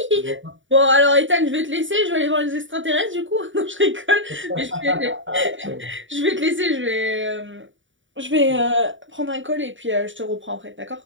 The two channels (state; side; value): late; left; 0.56 ms